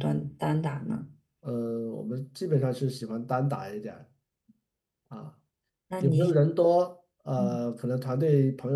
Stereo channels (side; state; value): both; identical; correlation 1.00